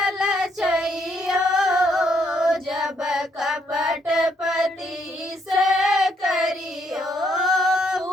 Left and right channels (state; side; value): normal; both; correlation 0.72